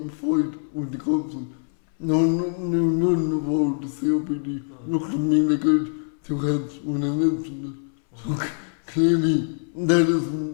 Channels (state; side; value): silent; right; 63 dB below the other